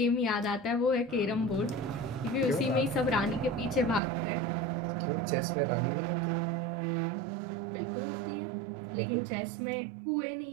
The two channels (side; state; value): left; drops out; at 4.0 s